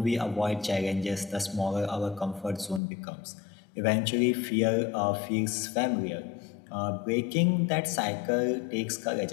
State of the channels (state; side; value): drops out; right; at 2.8 s